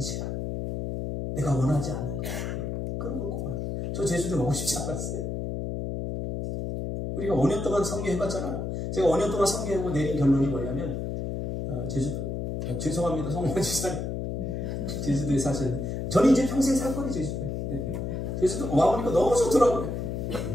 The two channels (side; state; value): left; noise; hum, 3 dB below the sound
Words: 내가 원하지 않는 것, 그런 거 꼭. 저 제주도 가고 싶지 않았어요. 우리가 5년 동안 선교해봤잖아요. 제가 5년 동안 선교하고 내린 결론이 뭐냐면 제주도, 죄송합니다 성모 지사님, 제주도에 사시는데 저는 이제 평생 살 거예요. 제주도에. 네. 제주도 와보니까 너무 좋더라고요.